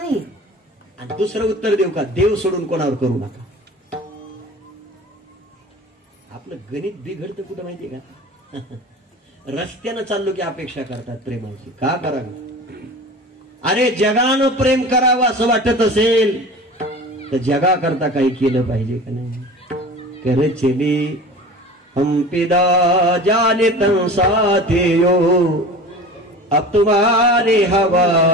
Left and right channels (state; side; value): normal; both; correlation 0.37